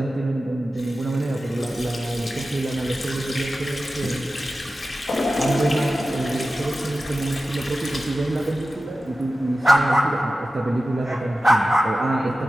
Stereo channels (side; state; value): both; normal; correlation 0.94